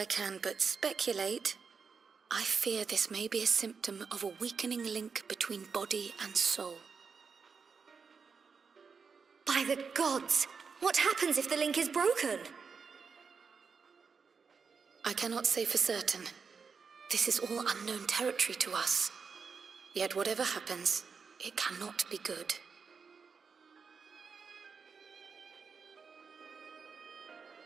can but speculate, I fear this may be a symptom of a weakening link between body and soul. By the gods! What happens if the link is broken? I cannot say for certain. This is all unknown territory to us. Yet whatever happens, it cannot be good.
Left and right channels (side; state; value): left; quieter; 5.6 dB